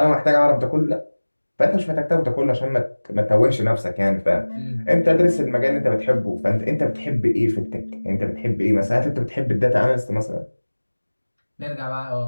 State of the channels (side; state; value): both; inverted; correlation -1.00